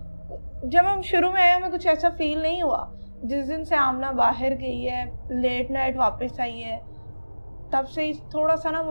जब हम शुरू में आए हमें कुछ ऐसा फील नहीं हुआ। जिस दिन से आमना बाहर गई है, लेट नाइट वापस आई है, तब से ही थोड़ा सा ना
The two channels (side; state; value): both; inverted; correlation -1.00